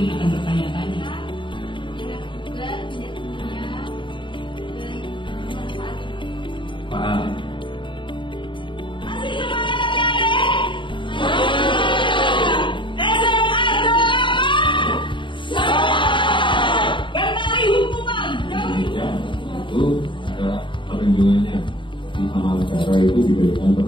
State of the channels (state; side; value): late; right; 0.24 ms